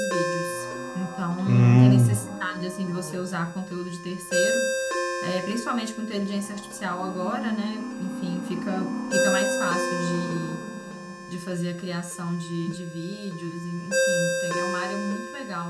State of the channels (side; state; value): both; identical; correlation 1.00